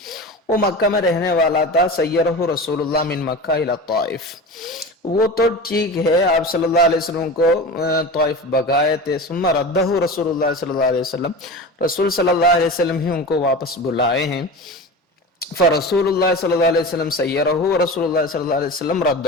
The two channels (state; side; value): normal; both; correlation 0.30